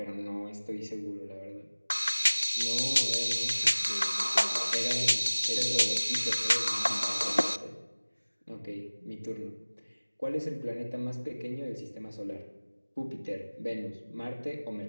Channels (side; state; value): both; inverted; correlation -1.00